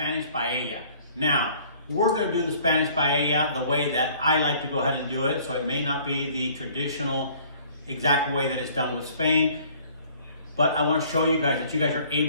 paella. Now, we're going to do the Spanish paella the way that I like to go ahead and do it, so it may not be the traditional exact way that it's done with Spain, but I want to show you guys that you guys are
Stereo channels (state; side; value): inverted; both; correlation -0.55